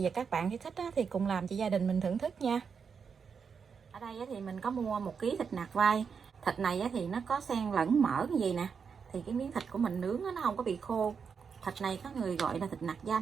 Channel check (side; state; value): left; quieter; 6.2 dB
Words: và các bạn nếu thích thì cùng làm cho gia đình mình thưởng thức nha. Ở đây thì mình có mua 1 kg thịt nạc vai. Thịt này thì nó có xen lẫn mỡ cái gì nè, thì cái miếng thịt của mình nướng nó không có bị khô. Thịt này có người gọi là thịt nạc